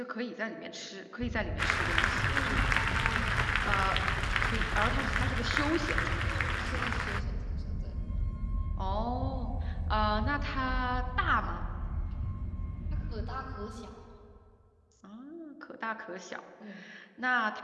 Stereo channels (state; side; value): identical; both; correlation 1.00